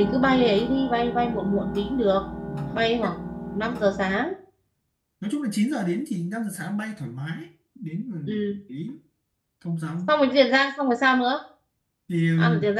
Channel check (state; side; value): identical; both; correlation 1.00